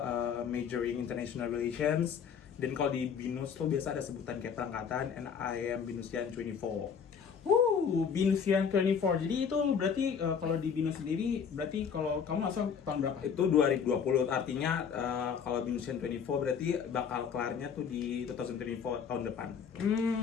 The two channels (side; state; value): right; quieter; 7.0 dB